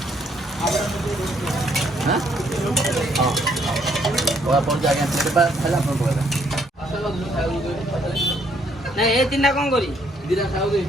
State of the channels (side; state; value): both; normal; correlation 0.69